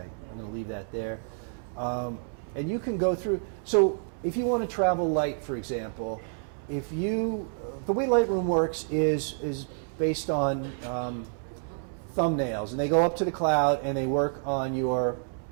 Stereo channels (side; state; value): left; silent; 59 dB below the other